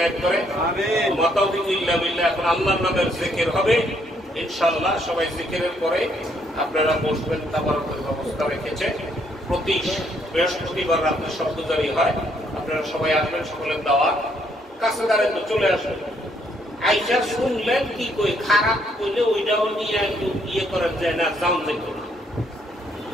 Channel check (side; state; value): both; normal; correlation 0.70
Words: করে। আমিন। ওয়া তাওফিকু ইল্লা বিল্লাহ। এখন আল্লাহর নামের জিকির হবে ইনশাআল্লাহ। সবাই জিকিরের পরে আপনারা বসবেন, তাবারকের ব্যবস্থা রেখেছে। প্রতি বৃহস্পতিবার রাতে শব্দজারি হয়, আপনারা সবাই আসবেন, সকলের দাওয়াত। কাছে দাঁড়ায় তো চলে আসবেন। আইসা শুনলেন কি কই, খারাপ কইলে ওইটাও নিয়ে একটু ইয়ে করার যায় না, যাও যেত না।